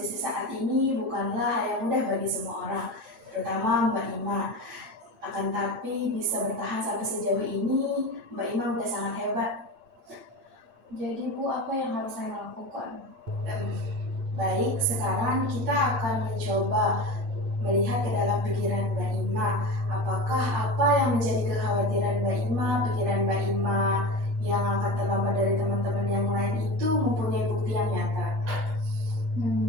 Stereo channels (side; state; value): left; late; 7.8 ms